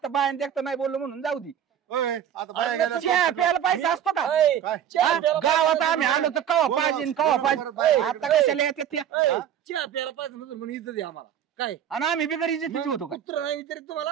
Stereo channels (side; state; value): left; quieter; 9.6 dB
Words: बायान देखता नाही बोललो म्हणून जाऊ दे ओय, आता बाया गेल्या. चहा प्यायला पैसा असतो का ऐ, काय? हा? गावात आम्ही आलो तर कवा पाहिजे कवा पाहिजे आता कशाला येतात त्या ऐ, चहा प्यायला पाहिजे नसेल म्हणून इज्जत आहे आम्हाला काय आणि आम्ही बिगर इज्जतीचे होतो का कुत्र नाही विचारित